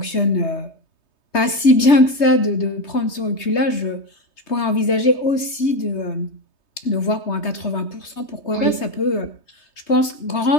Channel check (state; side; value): late; right; 3.2 ms